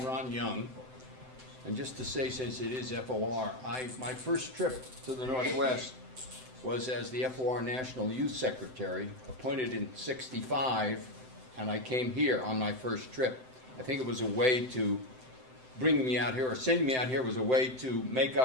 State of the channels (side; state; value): left; late; 7.8 ms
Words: Ron Young. And just to say, since it is FOR, my first trip to the Northwest was as the FOR National Youth Secretary, appointed in '65, and I came here on my first trip. I think it was a way to bring me out here, or sending me out here was a way to make